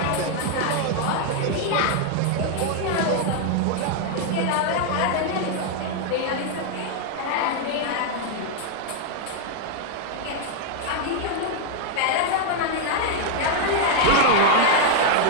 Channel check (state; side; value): different; both; correlation 0.00